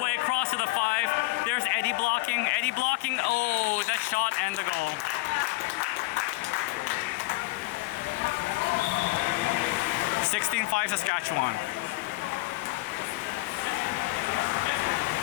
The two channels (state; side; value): quieter; right; 23.0 dB